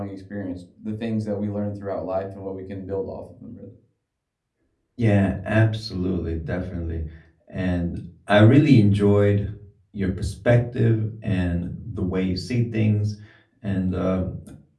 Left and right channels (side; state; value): both; identical; correlation 1.00